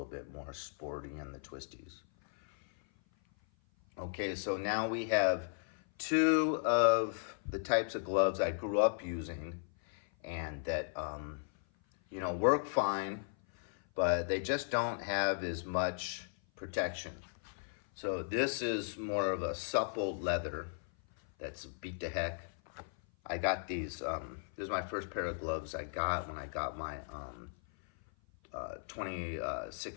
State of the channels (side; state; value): right; silent; 54 dB below the other